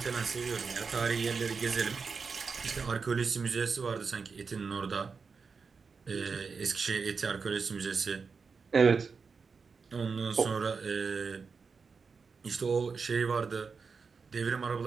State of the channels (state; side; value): quieter; left; 5.2 dB